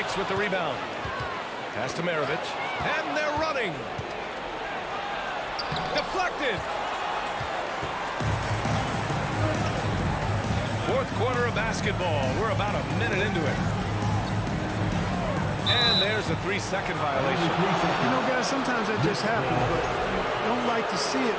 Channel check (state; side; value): identical; both; correlation 1.00